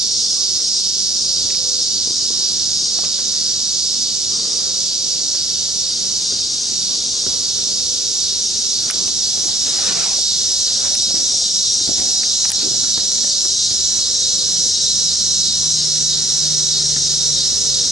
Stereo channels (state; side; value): normal; both; correlation 0.59